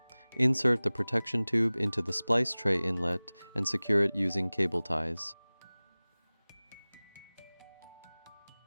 Insert the protection tube into the splice tray inlet and secure it using cable ties.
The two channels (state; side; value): inverted; both; correlation -1.00